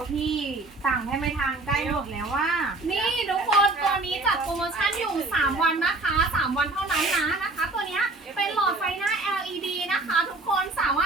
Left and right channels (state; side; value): quieter; left; 3.1 dB